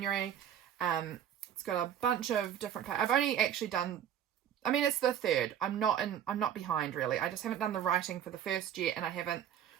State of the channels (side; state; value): left; quieter; 9.9 dB